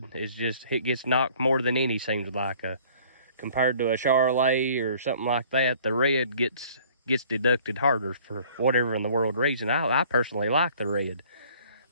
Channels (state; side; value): inverted; both; correlation -0.54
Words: is just, it gets knocked more than any, seems like. Compared to a Charolais or something like that, the red gets deducted harder for whatever in the world reason. I personally like the red.